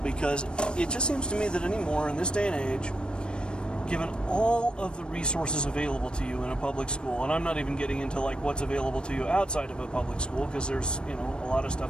because it just seems to me that anymore in this day and age, given all of the resources available to you in a public school, and I'm not even getting into like what's available to you outside of a public school, because there's, you know, a lot of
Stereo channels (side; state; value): right; late; 0.053 ms